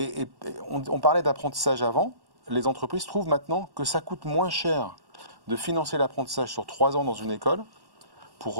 on parlait d'apprentissage avant. Les entreprises trouvent maintenant que ça coûte moins cher de financer l'apprentissage sur 3 ans dans une école pour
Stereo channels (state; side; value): late; left; 1.1 ms